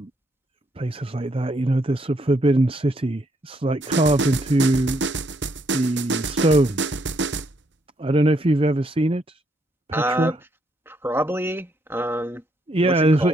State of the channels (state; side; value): normal; both; correlation 0.74